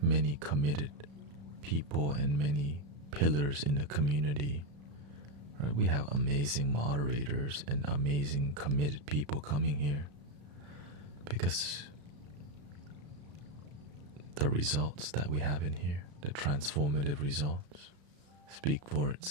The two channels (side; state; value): left; late; 34 ms